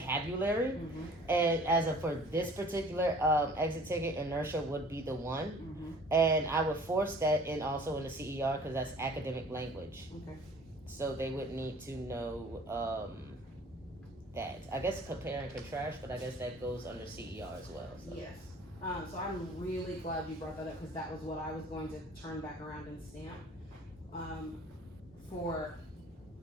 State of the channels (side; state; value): both; normal; correlation 0.50